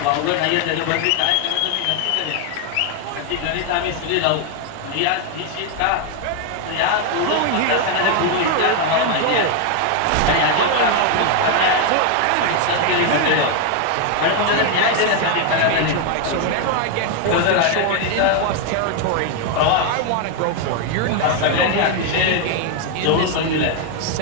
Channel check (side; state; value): both; different; correlation 0.01